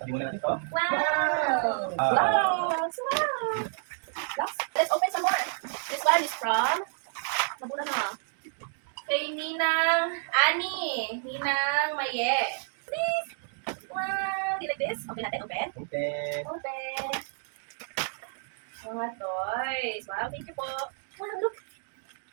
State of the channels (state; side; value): silent; left; 58 dB below the other